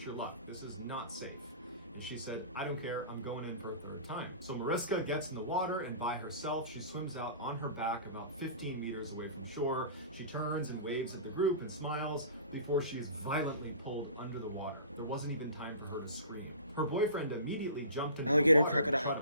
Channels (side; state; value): both; inverted; correlation -0.39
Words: your luck. This is not safe." And she said, "I don't care, I'm going in for a 3rd time." So Mariska gets in the water, and by herself, she swims out on her back about 15 meters away from shore. She turns and waves at the group and smiles before she's violently pulled under the water. There wasn't even time for her to scream. Her boyfriend immediately jumped in Alligator the water to crocodile. try